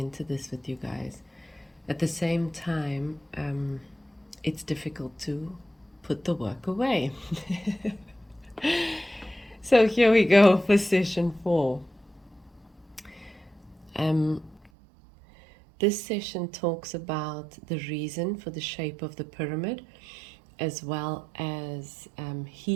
this with you guys. At the same time, it's difficult to put the work away. So here we go for session 4. This session talks about the reason for the shape of the pyramid, as well as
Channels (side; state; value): left; drops out; at 14.7 s